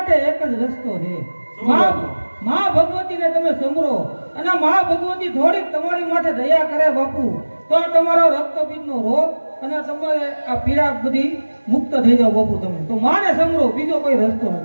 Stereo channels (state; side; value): inverted; both; correlation -1.00